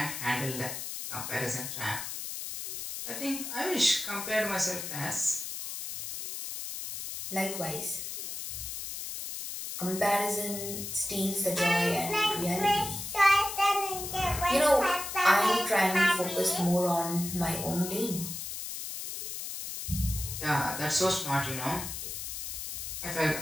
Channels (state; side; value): noise; left; hiss, 6 dB below the sound